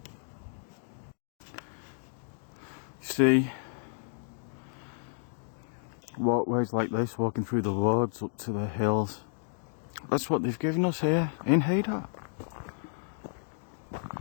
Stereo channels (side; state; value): right; silent; digital silence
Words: See, walkways like this, walking through the woods up to the hills. That's what they've given us here in Haydock.